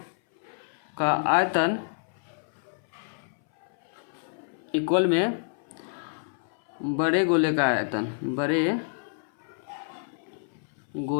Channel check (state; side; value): silent; right; 57 dB below the other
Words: का आयतन इक्वल में बड़े गोले का आयतन, बड़े